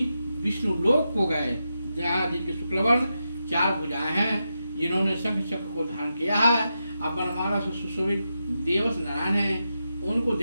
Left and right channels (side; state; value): both; inverted; correlation -0.87